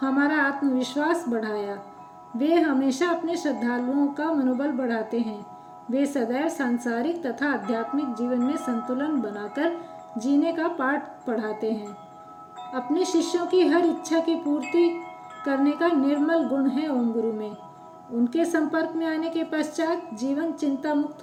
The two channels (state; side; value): identical; both; correlation 1.00